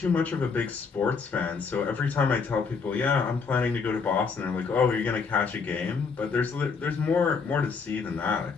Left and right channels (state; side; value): quieter; right; 5.2 dB